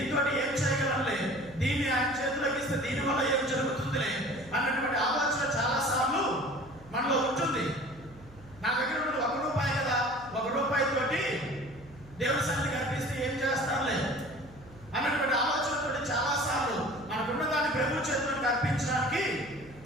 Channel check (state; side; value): noise; right; hum, 21 dB below the sound